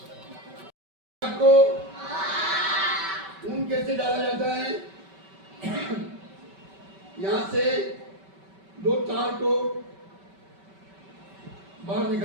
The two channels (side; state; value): left; late; 5.2 ms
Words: आपको ऊन कैसे डाला जाता है, यहां से 2 तार को बाहर